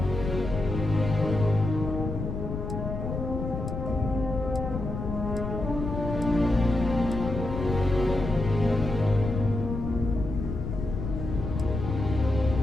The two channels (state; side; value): noise; left; rumble, 5 dB below the sound